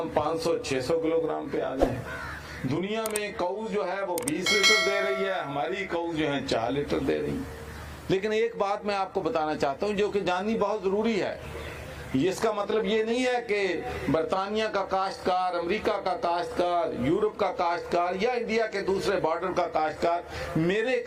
500-600 کلو گرام پہ آ گئے ہیں۔ دنیا میں کاؤز جو ہے وہ 20 لیٹر دے رہی ہے، ہماری کاؤز جو ہے 4 لیٹر دے رہی ہے۔ لیکن ایک بات میں آپ کو بتانا چاہتا ہوں جو کہ جاننی بہت ضروری ہے، اس کا مطلب یہ نہیں ہے کہ برطانیہ کا کاشتکار، امریکہ کا کاشتکار، یورپ کا کاشتکار یا انڈیا کے دوسرے بارڈر کا کاشتکار میرے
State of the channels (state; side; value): identical; both; correlation 1.00